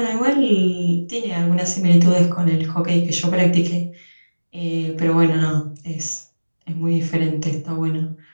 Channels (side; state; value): both; inverted; correlation -1.00